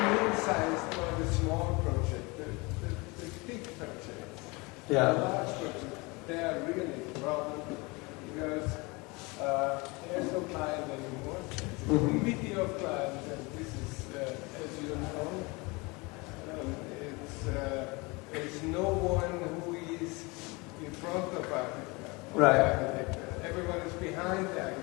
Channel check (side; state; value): right; quieter; 26.2 dB